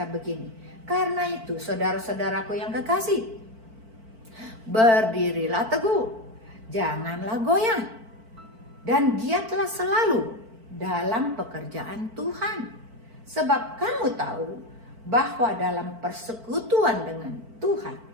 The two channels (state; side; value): late; left; 4.5 ms